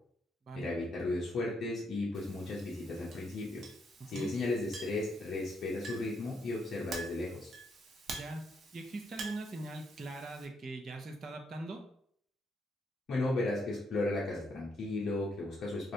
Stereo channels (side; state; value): both; normal; correlation 0.76